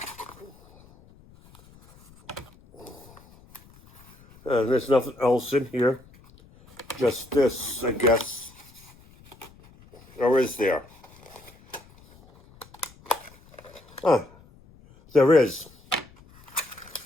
There's nothing else in here. Just this, I guess. Or is there? There is.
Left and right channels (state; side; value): noise; left; rumble, 25 dB below the sound